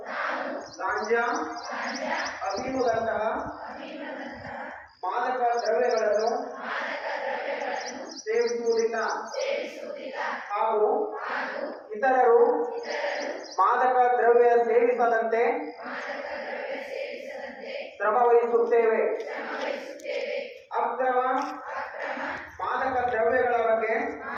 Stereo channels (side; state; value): both; identical; correlation 1.00